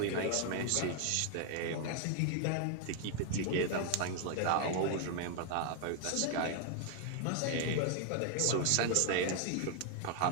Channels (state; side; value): different; both; correlation 0.00